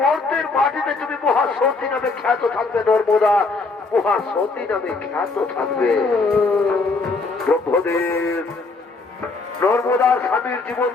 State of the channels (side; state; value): right; quieter; 3.9 dB